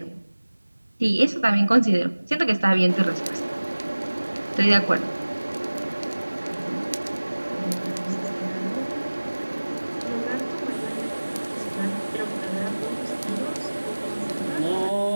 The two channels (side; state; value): both; inverted; correlation -1.00